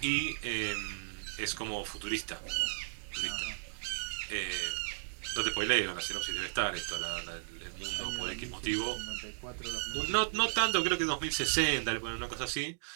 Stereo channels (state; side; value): silent; left; digital silence